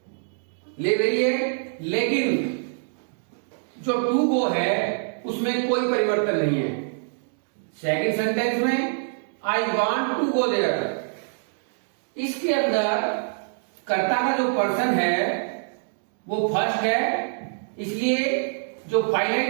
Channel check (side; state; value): left; silent; digital silence